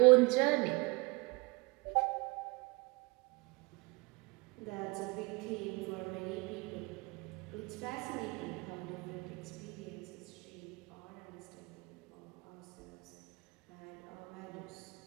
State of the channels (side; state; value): left; quieter; 26.3 dB